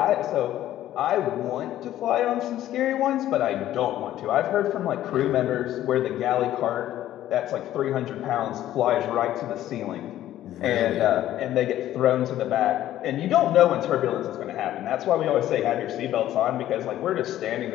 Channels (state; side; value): quieter; right; 13.0 dB